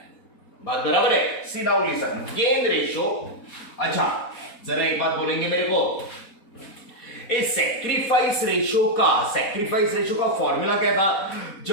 बात बराबर है? सी नाउ लिसन, गेन रेशो। अच्छा, जरा एक बात बोलेंगे मेरे को, इस सैक्रिफाइस रेशो का फॉर्मूला क्या था?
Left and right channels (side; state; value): right; late; 4.1 ms